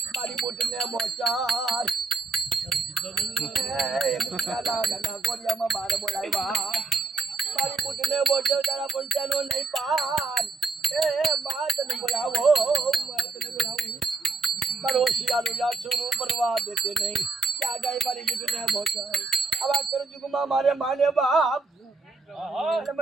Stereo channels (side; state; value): left; quieter; 3.9 dB